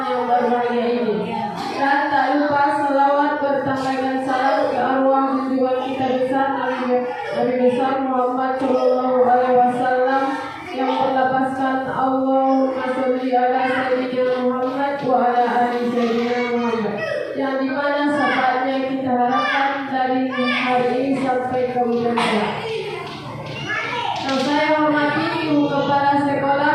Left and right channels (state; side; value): identical; both; correlation 1.00